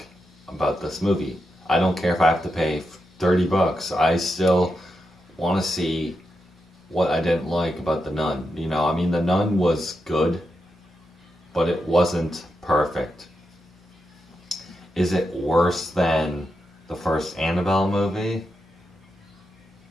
about this movie. I don't care if I have to pay $30. I still want to see what I didn't like about The Nun. You know, I mean, The Nun was good, but it wasn't perfect. Is it worse than the first Annabelle movie?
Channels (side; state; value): both; normal; correlation 0.86